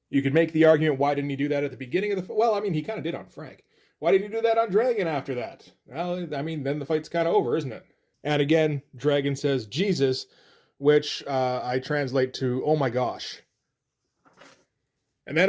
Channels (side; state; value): both; identical; correlation 1.00